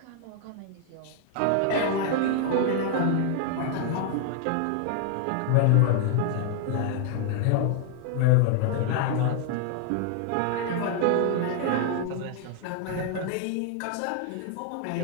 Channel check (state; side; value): different; both; correlation 0.00